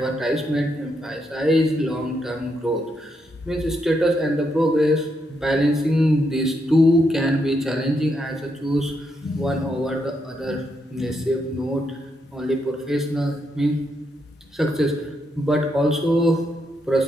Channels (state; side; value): normal; both; correlation 0.80